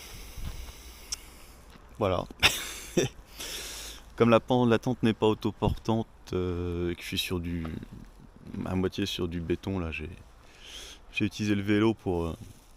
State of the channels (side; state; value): both; identical; correlation 1.00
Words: Voilà. Comme la tente n'est pas autoportante et que je suis à moitié sur du béton, là j'ai utilisé le vélo pour